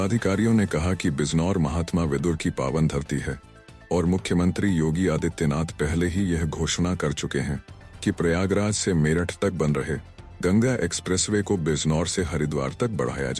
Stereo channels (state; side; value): identical; both; correlation 1.00